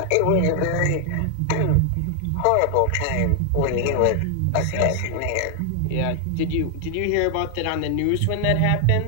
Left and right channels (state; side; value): different; both; correlation 0.00